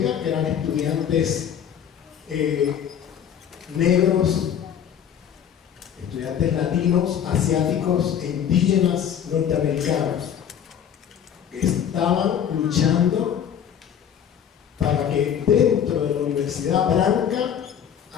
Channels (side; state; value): right; quieter; 8.9 dB